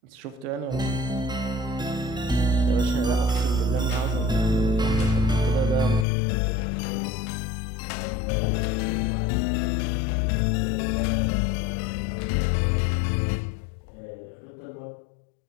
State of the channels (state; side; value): drops out; right; at 6.1 s